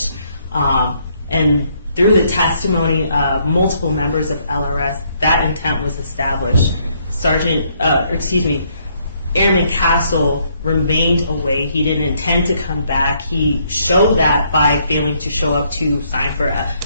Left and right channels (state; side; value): inverted; both; correlation -0.70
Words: And through the testimony of multiple members of LRS, that intent was established. Airman Castle remained away. He didn't intend to come back. He showed that by failing to show up to sign for